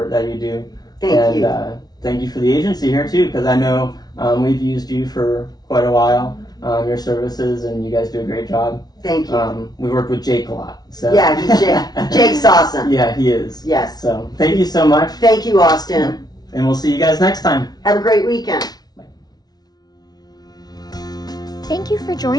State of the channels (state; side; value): late; right; 0.19 ms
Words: that you do. Thank you. Thank you for the agency here too, because I know we've used you for quite a while, your services, and you guys do a great job. Thank you. We worked with Jake a lot. So. Yeah, Jake's awesome. Yeah, he is. Yes. So thank you so much. Thank you, Austin. And we'll see you guys next time. Have a great weekend. Thank you for